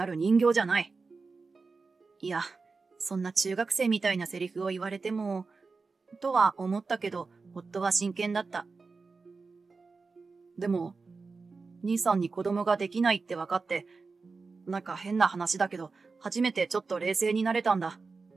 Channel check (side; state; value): left; quieter; 4.3 dB